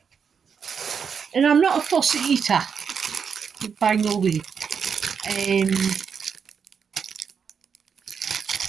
and I'm not a fussy eater, by no way.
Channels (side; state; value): left; quieter; 6.6 dB